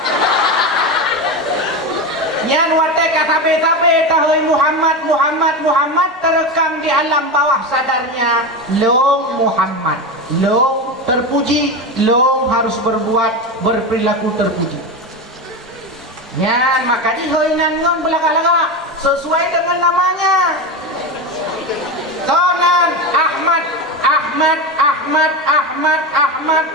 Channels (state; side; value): normal; both; correlation 0.19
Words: Yang watai katabe-tabe tahui Muhammad, Muhammad, Muhammad terekam di alam bawah sadarnya. Long Muhammad, long terpuji, long harus berbuat berperilaku terpuji. Yan, maka dihoinan ngon belaka-laka sesuai dengan namanya. Tonan Ahmad, Ahmad, Ahmad, Ahmad, Ahmad,